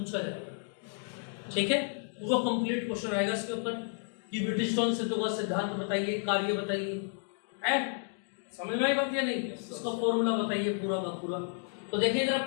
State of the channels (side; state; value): right; silent; 57 dB below the other